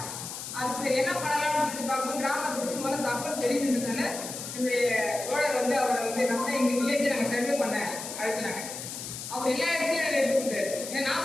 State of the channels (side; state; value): left; noise; hiss, 8 dB below the sound